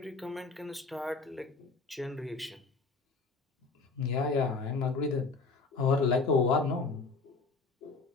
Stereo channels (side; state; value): right; quieter; 4.1 dB